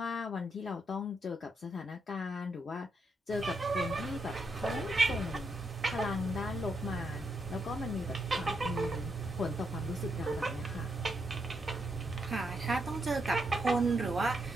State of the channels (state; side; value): normal; both; correlation 0.80